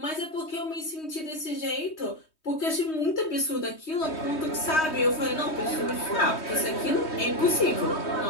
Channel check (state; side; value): late; right; 3.2 ms